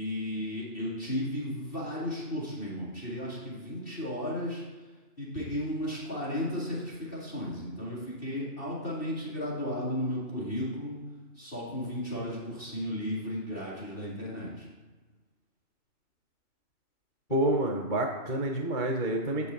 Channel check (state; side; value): late; right; 2.7 ms